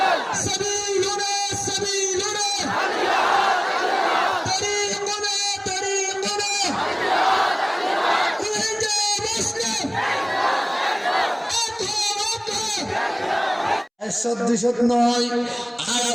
সাবিলুনা সাবিলুনা, তরিকুনা তরিকুনা, উহিজা মুসলিম, একশত দুইশত নয়। আর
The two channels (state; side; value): identical; both; correlation 1.00